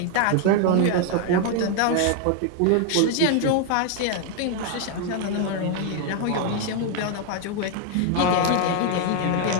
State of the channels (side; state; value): both; different; correlation 0.01